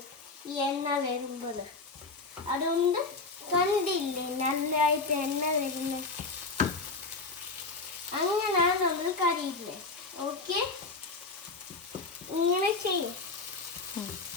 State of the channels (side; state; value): right; quieter; 3.8 dB